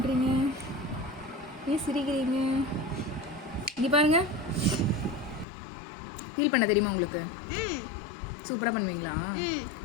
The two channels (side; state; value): right; drops out; at 5.5 s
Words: ஏன் சிரிக்கிறீங்க? இங்கே பாருங்க. பீல் பண்ண தெரியுமா உங்களுக்கு? சூப்பராக பண்ணுவீங்களா?